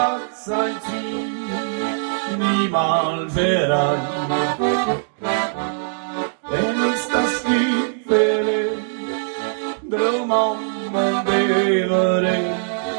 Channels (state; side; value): silent; left; digital silence